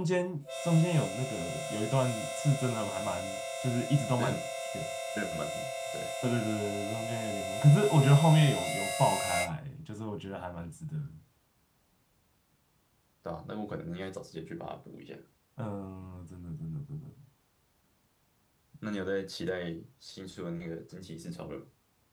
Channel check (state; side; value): identical; both; correlation 1.00